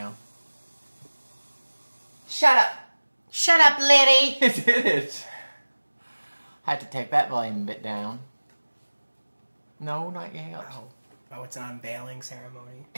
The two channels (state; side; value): inverted; both; correlation -1.00